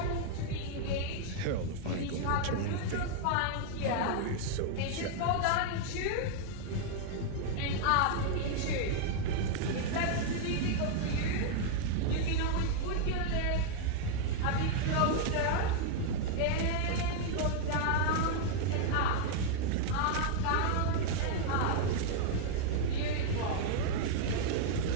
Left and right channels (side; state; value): both; different; correlation -0.01